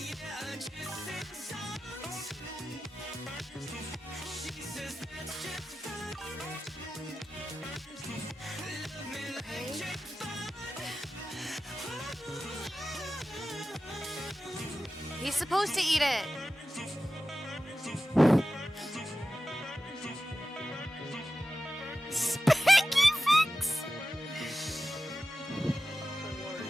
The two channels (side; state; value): both; normal; correlation 0.94